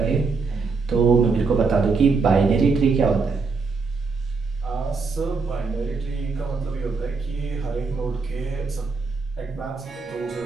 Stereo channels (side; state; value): left; quieter; 4.5 dB